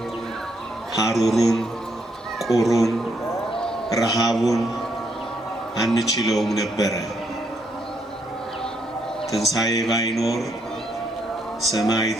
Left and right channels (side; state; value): both; normal; correlation 0.74